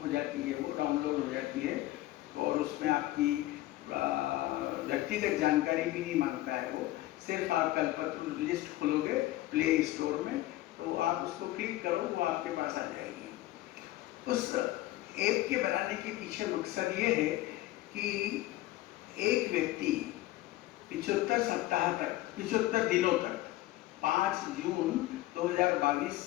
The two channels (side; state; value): right; quieter; 16.5 dB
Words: जाती है, वो डाउनलोड हो जाती है। और उसमें आपकी व्यक्तिगत जानकारी भी नहीं मांगता है वो, सिर्फ आप कल्पतरु लिस्ट खोलोगे प्ले स्टोर में, तो आप उसको क्लिक करो, वो आपके पास आ जाएगी। उस ऐप के बनाने के पीछे मकसद ये है कि एक व्यक्ति 75 सप्ताह तक, 75 दिनों तक, 5 जून 2022